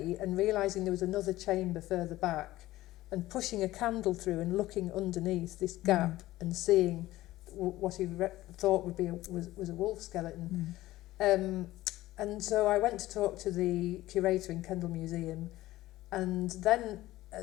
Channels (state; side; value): quieter; right; 16.5 dB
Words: and realising there was another chamber further back and pushing a candle through and looking underneath this gap and seeing what he thought would be was a wolf skeleton. And so I went to talk to the curator in Kendal Museum, and then